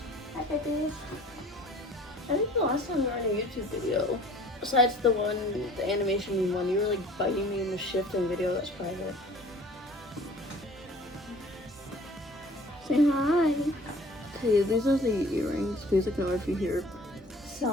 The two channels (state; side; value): normal; both; correlation 0.49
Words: Hi, babies. I think the last time we were in a YouTube video, besides the animation one, you were like biting me in the shifting video that's private. Say hi. Okay, these are the earrings. Please ignore if you hear